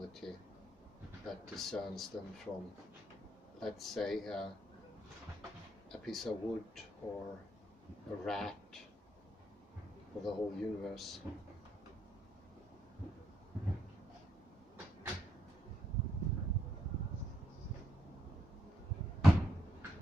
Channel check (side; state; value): both; normal; correlation 0.76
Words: that discerns them from, let's say, a piece of wood or a rat or the whole universe.